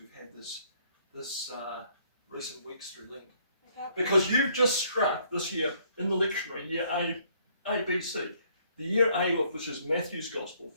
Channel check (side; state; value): both; inverted; correlation -0.66